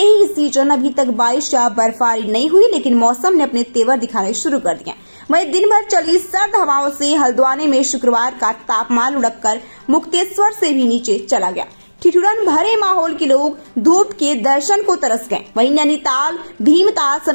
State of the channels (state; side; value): inverted; both; correlation -1.00